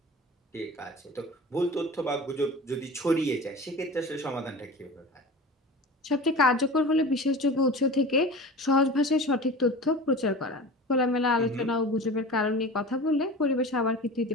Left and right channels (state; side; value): normal; both; correlation 0.35